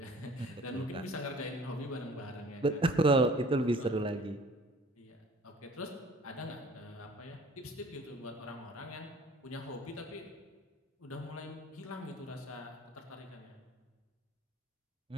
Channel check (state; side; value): normal; both; correlation 0.50